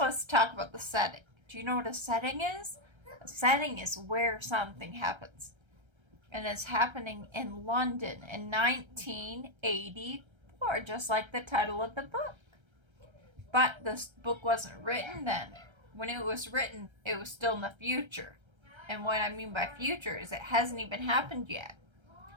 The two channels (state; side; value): late; left; 1.3 ms